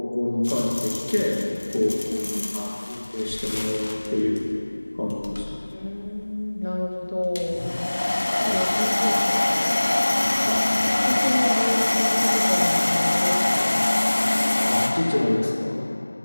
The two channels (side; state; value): both; inverted; correlation -1.00